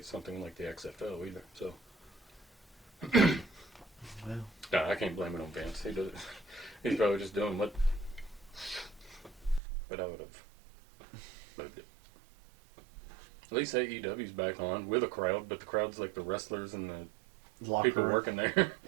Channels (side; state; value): left; drops out; at 9.6 s